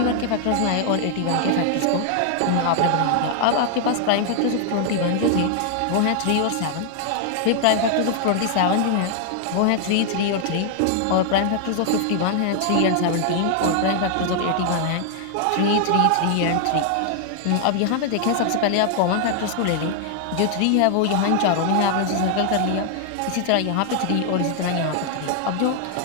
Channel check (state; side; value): different; both; correlation 0.00